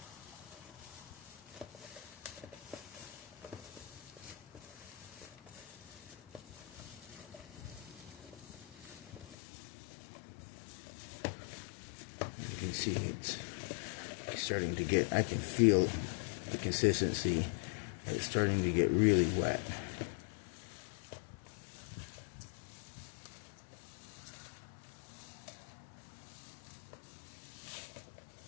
You can see it's starting to get, I can feel the consistency. It's starting to get really wet.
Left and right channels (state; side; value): drops out; right; at 9.3 s